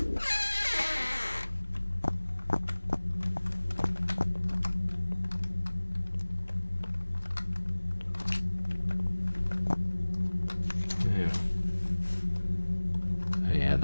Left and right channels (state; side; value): inverted; both; correlation -1.00